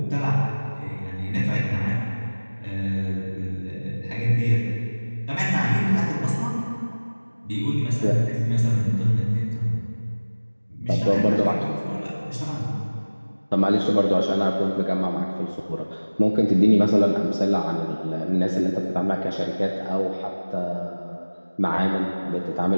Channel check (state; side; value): inverted; both; correlation -1.00